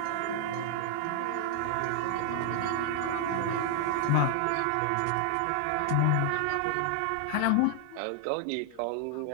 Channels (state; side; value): different; both; correlation 0.00